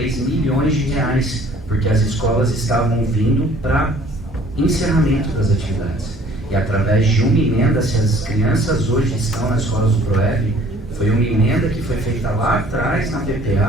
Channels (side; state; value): both; normal; correlation 0.55